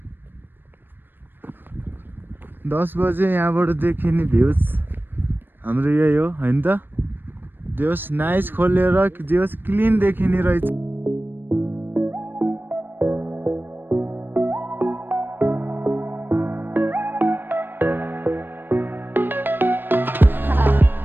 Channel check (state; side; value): late; left; 0.095 ms